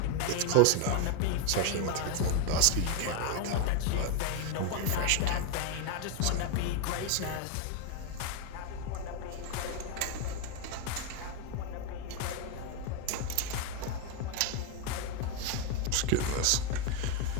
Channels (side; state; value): both; different; correlation 0.01